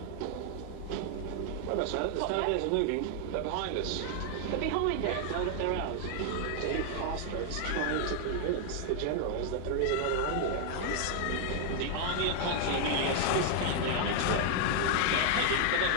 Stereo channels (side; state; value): both; different; correlation 0.00